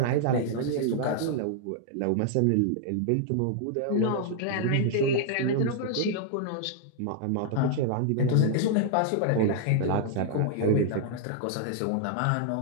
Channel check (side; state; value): both; different; correlation -0.01